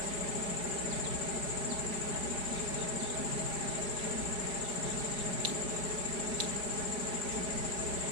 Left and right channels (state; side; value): late; left; 4.9 ms